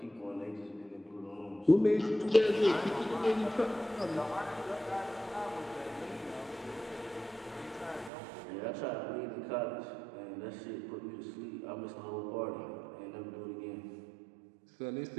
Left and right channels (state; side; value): drops out; left; at 8.1 s